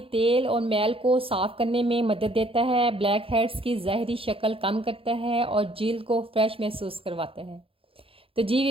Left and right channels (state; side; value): late; left; 0.27 ms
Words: تیل اور میل کو صاف کرنے میں مدد دیتا ہے، بلیک ہیڈز کی ظاہری شکل کم کرتا ہے اور جلد کو فریش محسوس کرواتا ہے۔ تو جی